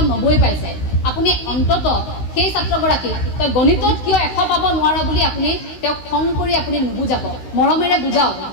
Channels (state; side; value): late; right; 16 ms